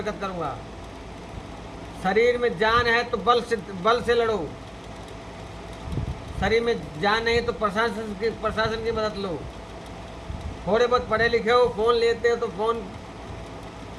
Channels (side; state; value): both; identical; correlation 1.00